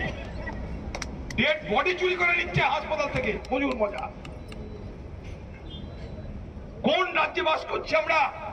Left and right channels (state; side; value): identical; both; correlation 1.00